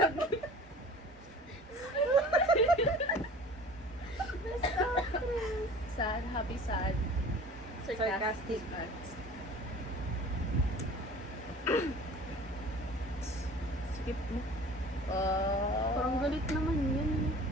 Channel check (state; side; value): normal; both; correlation 0.44